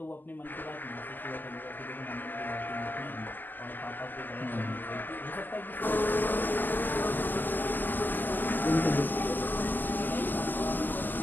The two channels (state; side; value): late; right; 0.088 ms